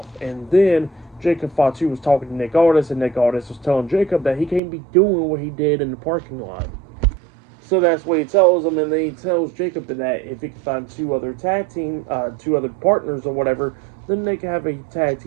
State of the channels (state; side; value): drops out; left; at 4.6 s